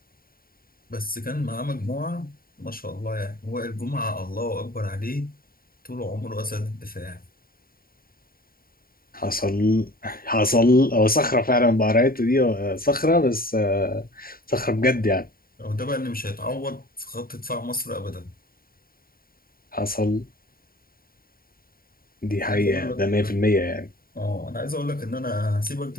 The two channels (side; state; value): right; late; 0.43 ms